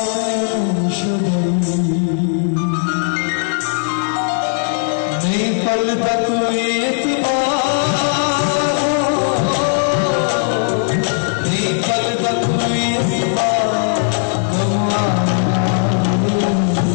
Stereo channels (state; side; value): silent; right; 68 dB below the other